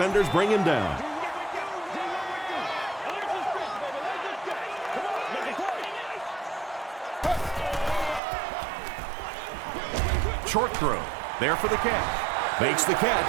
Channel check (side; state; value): left; drops out; at 8.2 s